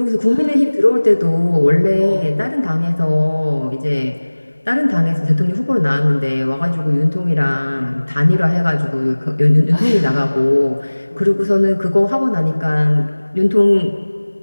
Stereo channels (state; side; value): inverted; both; correlation -1.00